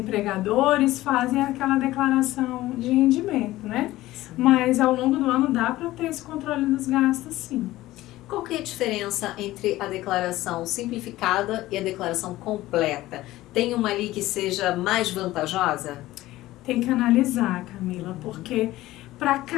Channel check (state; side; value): quieter; right; 16.6 dB